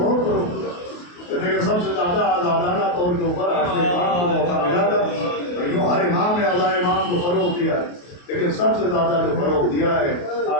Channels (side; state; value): right; late; 28 ms